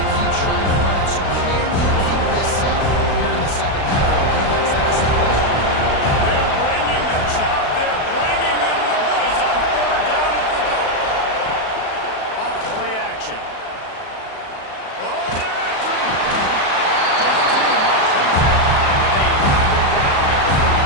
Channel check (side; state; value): right; late; 36 ms